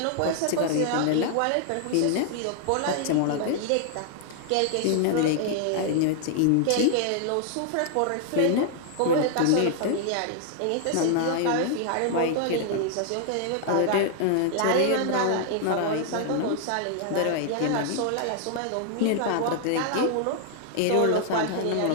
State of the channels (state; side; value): different; both; correlation 0.00